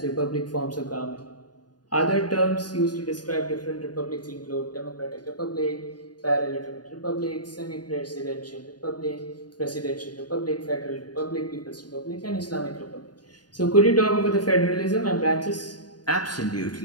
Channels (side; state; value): right; late; 0.69 ms